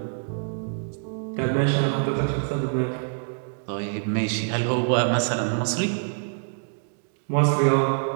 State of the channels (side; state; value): left; silent; digital silence